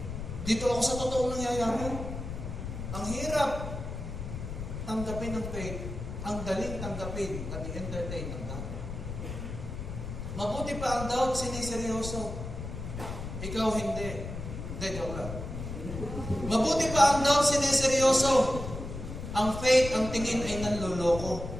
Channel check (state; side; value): noise; left; rumble, 7 dB below the sound